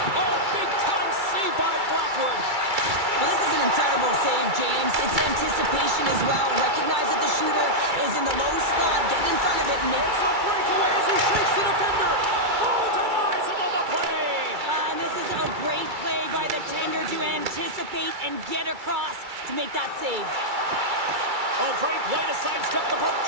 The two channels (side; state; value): left; late; 2.3 ms